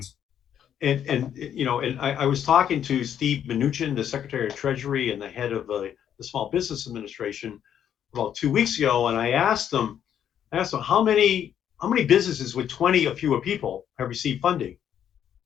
And I was talking to Steve Mnuchin, the Secretary of Treasury and the head of the Small Business Administration, about 2 weeks ago, and I asked them how many businesses with 20 or fewer people have received funding,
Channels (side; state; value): right; quieter; 9.5 dB